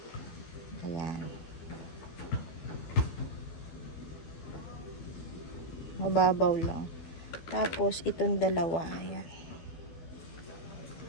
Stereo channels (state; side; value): late; right; 12 ms